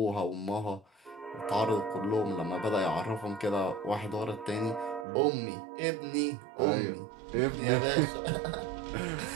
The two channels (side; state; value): left; drops out; at 5.1 s